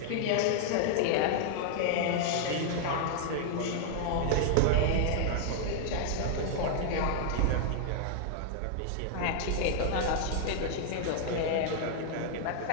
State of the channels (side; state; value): both; different; correlation -0.01